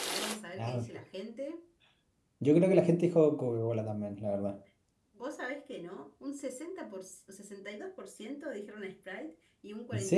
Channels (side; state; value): both; identical; correlation 1.00